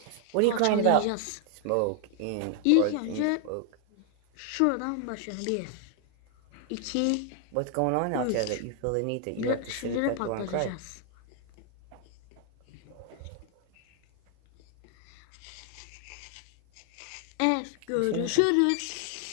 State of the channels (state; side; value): different; both; correlation 0.00